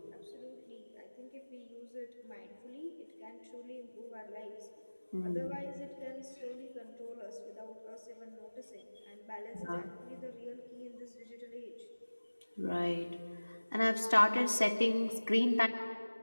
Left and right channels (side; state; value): both; inverted; correlation -1.00